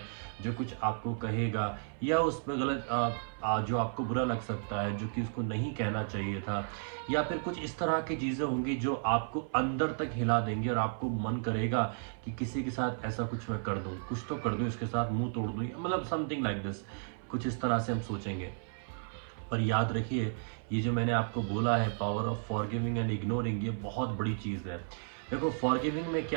जो कुछ आपको कहेगा या उसमें गलत जो आपको बुरा लग सकता है, जो कि उसको नहीं कहना चाहिए था, या फिर कुछ इस तरह की चीज़ें होंगी जो आपको अंदर तक हिला देंगी और आपको मन करेगा कि किसी के साथ ऐसा कुछ मैं कर दूं, कुछ तो कर दूं, इसके साथ मुंह तोड़ दूं, मतलब समथिंग लाइक दिस, कुछ इस तरह से हम सोचेंगे। पर याद रखिए, ये जो मैंने आपको बोला है power of forgiving and ignoring, ये बहुत बड़ी चीज़ है। देखो, फॉरगिविंग में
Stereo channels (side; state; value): left; silent; 56 dB below the other